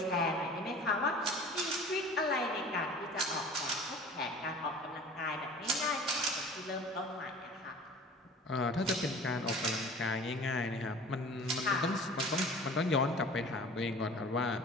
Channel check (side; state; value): both; normal; correlation 0.44